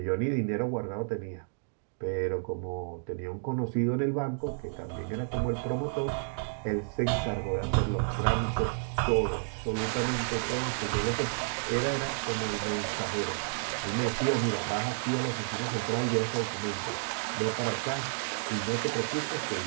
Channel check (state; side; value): silent; left; digital silence